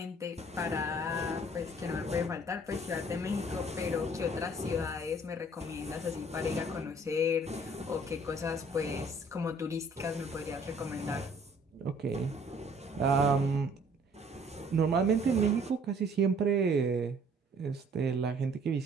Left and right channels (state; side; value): normal; both; correlation 0.57